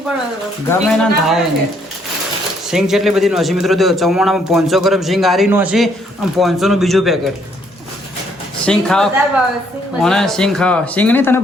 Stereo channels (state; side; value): normal; both; correlation 0.68